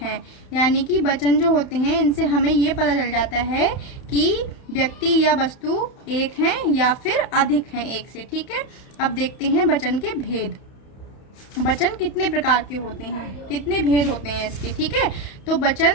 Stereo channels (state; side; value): late; right; 31 ms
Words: है। यानी कि वचन जो होते हैं इनसे हमें ये पता चल जाता है कि व्यक्ति या वस्तु एक है या फिर अधिक है एक से। ठीक है, अब देखते हैं वचन के भेद। वचन कितने प्रकार के होते हैं, कितने भेद होते हैं इसके। ठीक है, तो